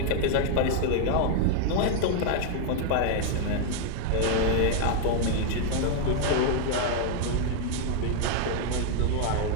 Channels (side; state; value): both; different; correlation 0.00